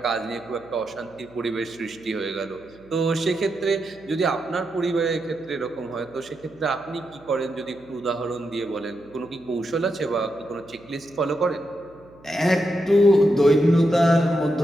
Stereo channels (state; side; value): noise; right; hum, 25 dB below the sound